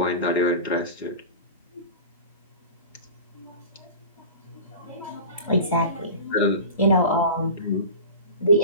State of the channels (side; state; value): both; inverted; correlation -0.33